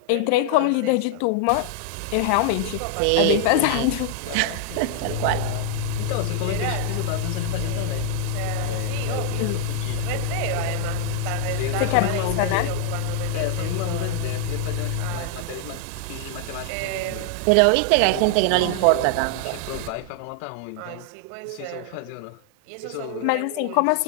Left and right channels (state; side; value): different; both; correlation 0.00